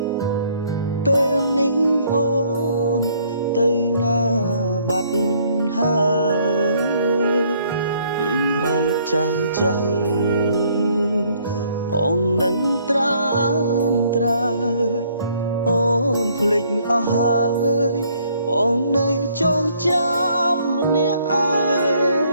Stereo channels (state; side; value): inverted; both; correlation -0.64